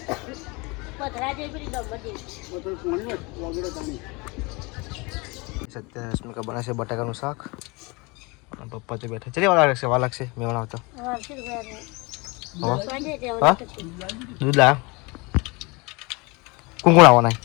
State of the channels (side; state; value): right; quieter; 26.8 dB